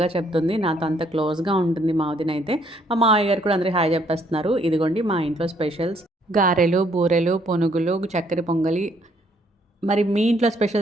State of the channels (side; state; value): both; normal; correlation 0.67